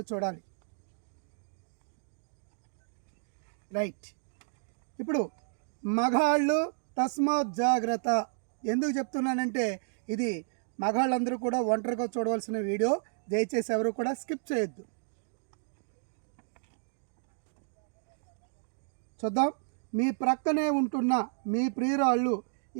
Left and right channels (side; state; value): left; silent; digital silence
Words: చూడాలి. రైట్. ఇప్పుడు మగాళ్ళు తస్మాత్ జాగ్రత్త. ఎందుకు చెప్తున్నానంటే ఇది మగాళ్ళందరూ కూడా ఒంటరిగా చూడవలసిన వీడియో. దయచేసి ఎవరు కూడా స్కిప్ చేయొద్దు. చూద్దాం. మీ ప్రక్కనే ఉంటున్న మీ ప్రియురాళ్ళు